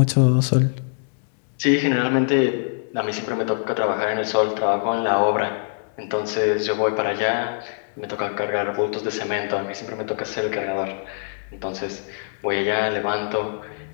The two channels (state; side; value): silent; right; digital silence